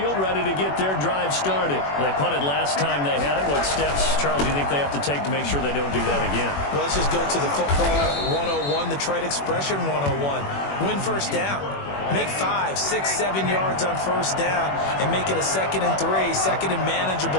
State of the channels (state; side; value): late; right; 21 ms